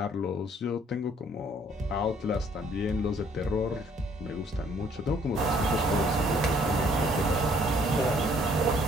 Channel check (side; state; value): both; normal; correlation 0.62